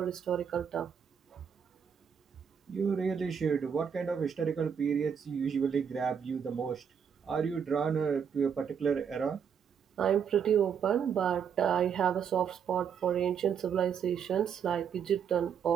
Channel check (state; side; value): quieter; left; 7.4 dB